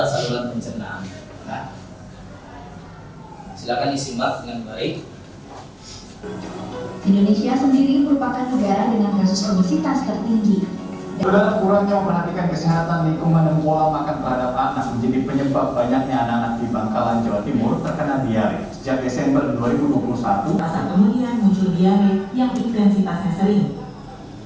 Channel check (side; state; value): both; identical; correlation 1.00